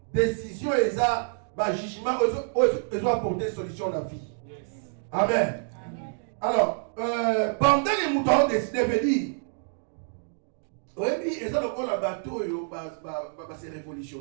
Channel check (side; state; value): left; silent; digital silence